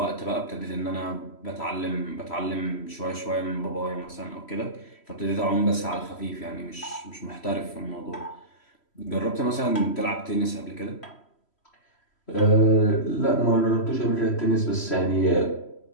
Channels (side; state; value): right; late; 3.1 ms